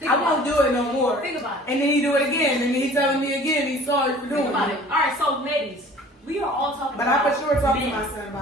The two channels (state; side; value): normal; both; correlation 0.48